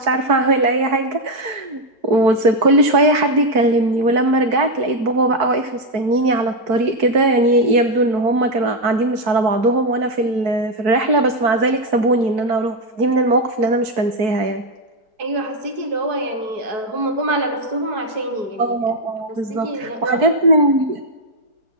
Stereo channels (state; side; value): late; left; 4.6 ms